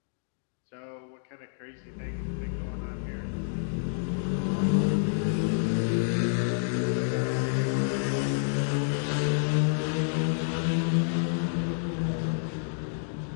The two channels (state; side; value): silent; right; digital silence